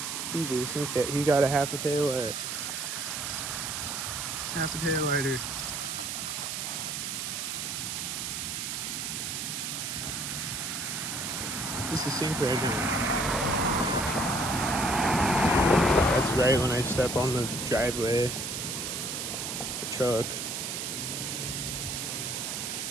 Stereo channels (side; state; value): right; noise; hiss, 3 dB below the sound